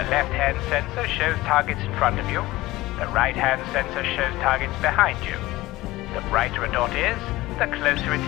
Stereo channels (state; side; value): quieter; right; 18.3 dB